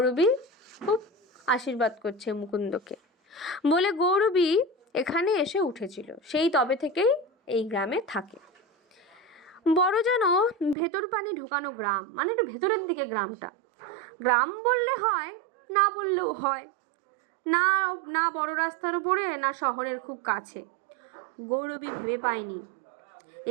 খুব আশীর্বাদ করছে মুকুন্দকে বলে গৌরবী এখানে এসে উঠেছিল। সেই তবে থেকেই এই গ্রামে থাকে। বড় যেন ভেতর পানে ঢোকানো গ্রাম, মানে একটু ভেতরের দিকে গ্রামটা। গ্রাম বললে হয়, না বললেও হয়। না না বড় রাস্তার ওপরে, না শহরের খুব কাছে। গৌরবী ভেবে পায়নি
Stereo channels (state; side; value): drops out; left; at 10.8 s